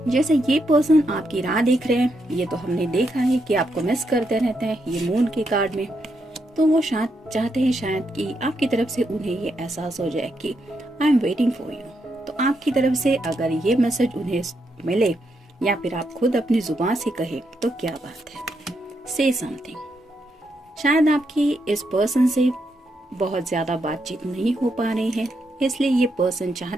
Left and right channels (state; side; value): normal; both; correlation 0.80